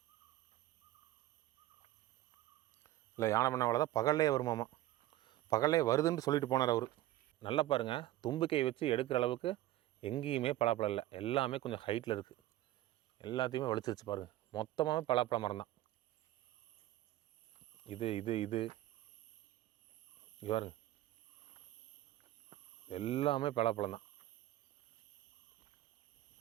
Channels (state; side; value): quieter; left; 15.2 dB